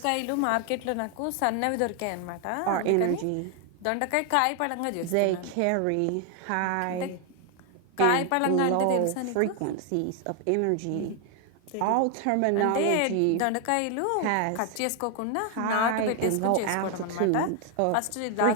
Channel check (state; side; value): different; both; correlation 0.00